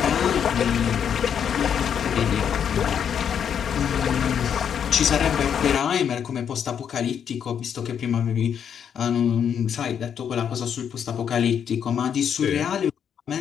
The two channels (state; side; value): quieter; right; 8.1 dB